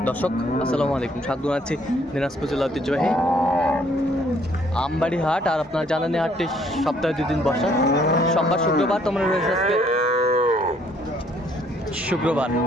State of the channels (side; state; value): both; normal; correlation 0.64